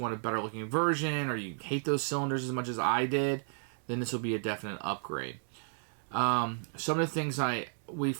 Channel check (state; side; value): silent; left; 55 dB below the other